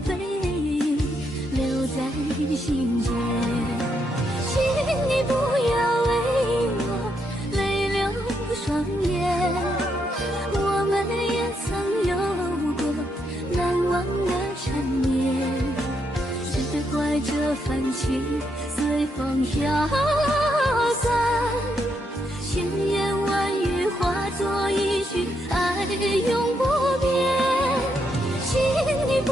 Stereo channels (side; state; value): both; normal; correlation 0.79